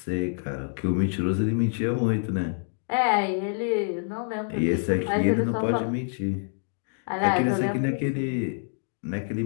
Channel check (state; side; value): silent; right; digital silence